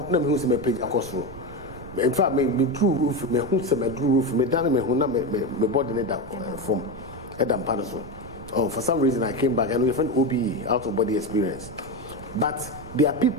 na me hu say me page across road. In fact, me drew roof, me hu say me drew roof, me down me hu na me body ne that from Edam Panaso. Oh, for some reason I came back and we found OBE, out of body experience. But there are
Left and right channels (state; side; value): noise; right; rumble, 15 dB below the sound